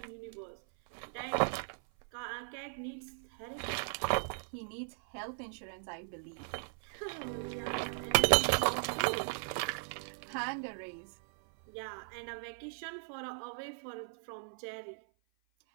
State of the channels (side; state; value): left; silent; 53 dB below the other